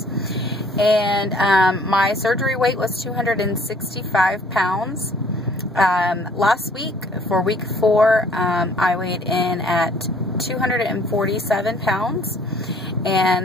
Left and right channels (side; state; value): both; normal; correlation 0.58